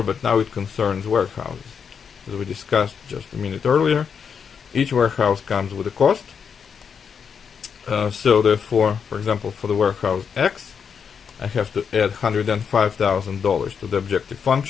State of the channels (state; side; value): quieter; right; 6.7 dB